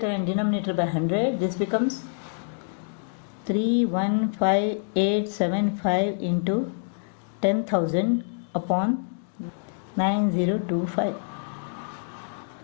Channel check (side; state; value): right; silent; digital silence